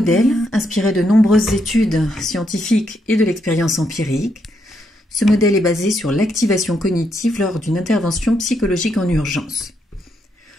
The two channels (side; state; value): both; normal; correlation 0.78